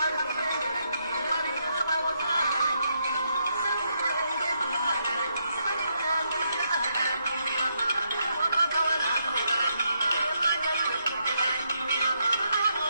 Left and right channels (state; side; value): inverted; both; correlation -0.78